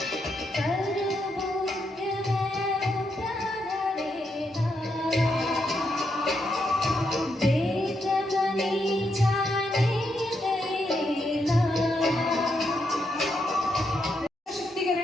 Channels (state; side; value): normal; both; correlation 0.80